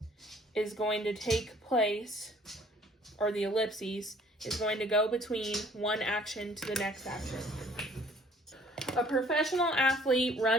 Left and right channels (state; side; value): normal; both; correlation 0.57